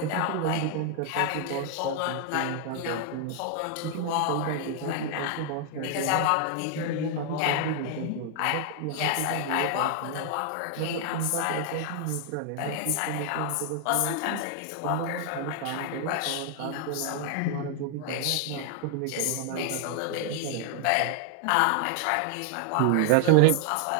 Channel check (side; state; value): both; different; correlation 0.00